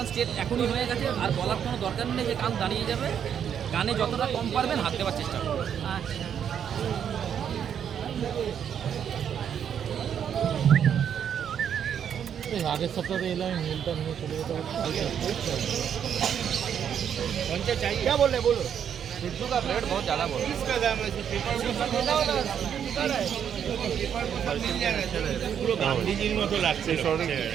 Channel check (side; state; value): left; quieter; 8.5 dB